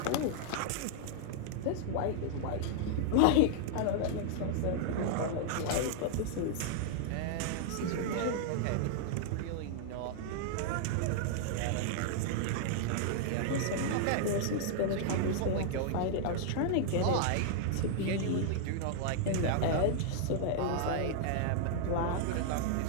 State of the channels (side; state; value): both; different; correlation -0.01